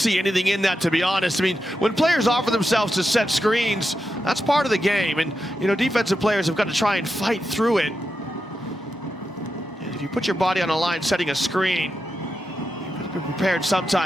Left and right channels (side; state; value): both; normal; correlation 0.88